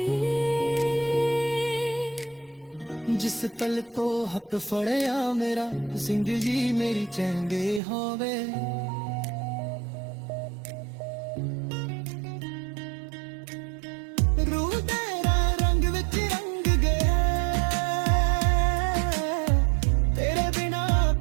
ਜਿਸ ਪਲ ਤੋਂ ਹੱਥ ਫੜਿਆ ਮੇਰਾ, ਜ਼ਿੰਦਗੀ ਮੇਰੀ ਚੰਗੇ ਹੋਵੇ। ਰੂਹ ਤੇਰਾ ਰੰਗ ਵਿੱਚ ਰੰਗ ਗਿਆ, ਤੇਰੇ ਬਿਨਾ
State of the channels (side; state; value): left; drops out; at 7.8 s